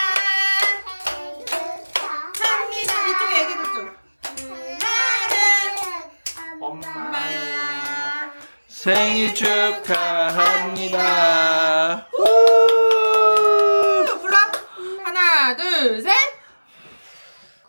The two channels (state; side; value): inverted; both; correlation -1.00